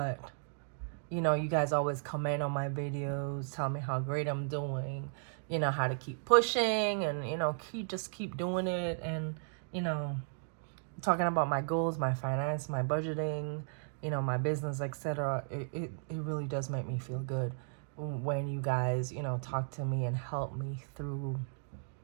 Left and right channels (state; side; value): silent; left; digital silence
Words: you guys always comment on my videos, tell me how great I'm doing, how to keep pushing and keep doing it, and talking about my goals, my finance, my budgeting, my business, etc. It really does make me feel good when you guys, talk to me and help me through